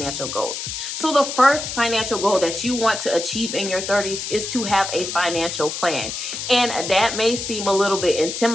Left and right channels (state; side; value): noise; left; hiss, 5 dB below the sound